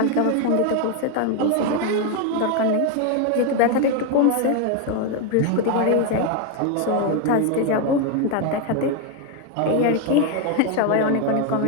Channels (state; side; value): different; both; correlation 0.01